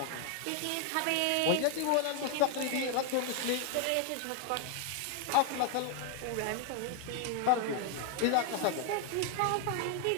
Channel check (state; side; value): different; both; correlation 0.00